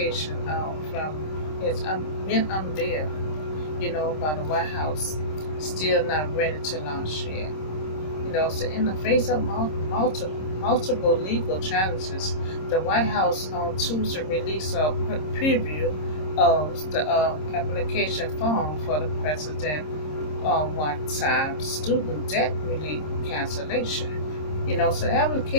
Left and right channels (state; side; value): late; right; 26 ms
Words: from it's been unveiled, by the White House, still not ready to launch yet. So in the face of multiple legal challenges, the White House on Tuesday released a preview of the application form for the president one-time student debt relief cancellation. So the